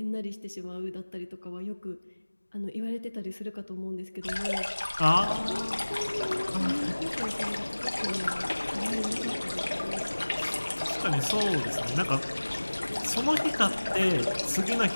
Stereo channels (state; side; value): inverted; both; correlation -1.00